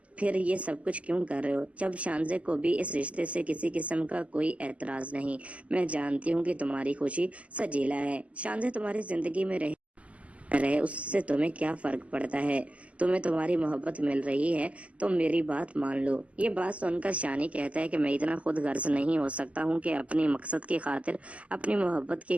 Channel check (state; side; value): late; left; 0.066 ms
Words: फिर ये सब कुछ क्यों कर रहे हो? जब शानजे को भी इस रिश्ते से किसी किस्म का कोई एतराज नहीं। मैं जानती हूँ कि तुम्हारी खुशी सजीला है। शानजे तुम्हारी जिंदगी में रहे उससे तुम्हें क्या फर्क पड़ता है? तुम्हें तुम्हारी मोहब्बत मिल रही है तो मेरी बात मान लो। ये बात सुनकर शानी कहता है कि मैं इतना खुद गर्ज नहीं हो सकता हूँ कि अपनी मकसद की खातिर, अपनी मोहब्बत